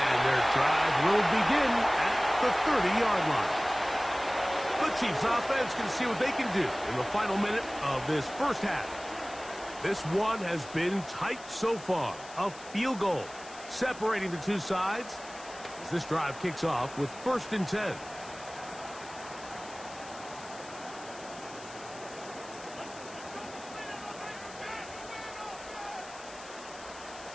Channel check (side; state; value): left; noise; hiss, 17 dB below the sound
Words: their drive will begin at the 30-yard line. The Chiefs offense can see what they can do in the final minute of this first half. This one has been tight so far. A field goal separating the two sides as this drive kicks off with 1st and 10.